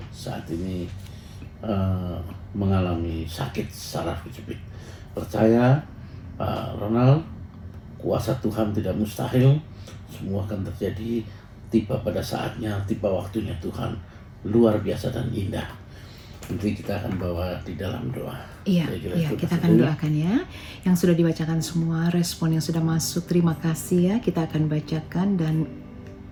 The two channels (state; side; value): identical; both; correlation 1.00